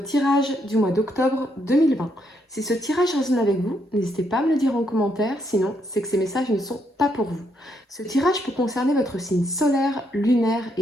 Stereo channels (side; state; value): both; normal; correlation 0.76